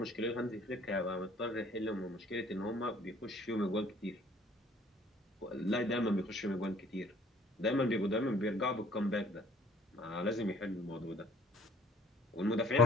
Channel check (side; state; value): both; normal; correlation 0.56